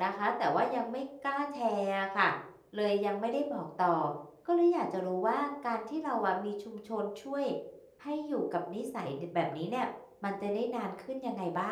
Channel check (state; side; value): identical; both; correlation 1.00